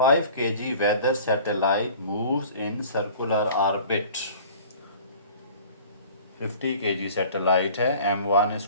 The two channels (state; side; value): inverted; both; correlation -0.45